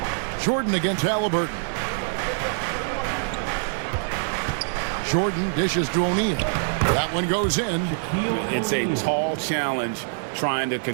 Jordan against Halliburton. Jordan dishes to O'Neal. That one goes in. It's a tall challenge trying to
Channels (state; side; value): silent; left; digital silence